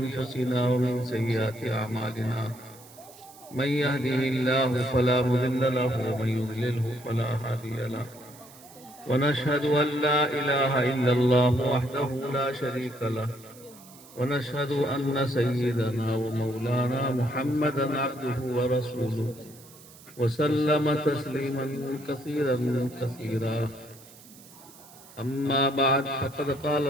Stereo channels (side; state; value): right; noise; hiss, 22 dB below the sound